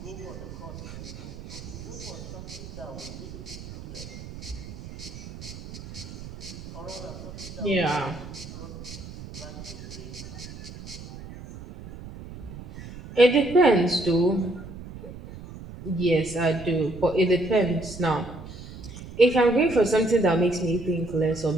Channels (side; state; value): right; noise; rumble, 13 dB below the sound